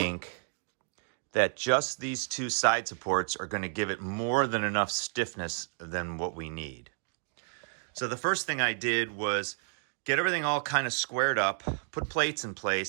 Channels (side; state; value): left; silent; 57 dB below the other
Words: that just these two side supports are going to give it more than enough stiffness than what we need. So the first thing I did was get everything all kind of squared up, put plates in